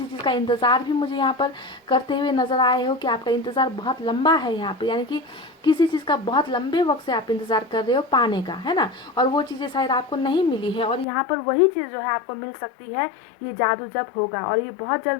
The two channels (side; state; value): right; drops out; at 11.1 s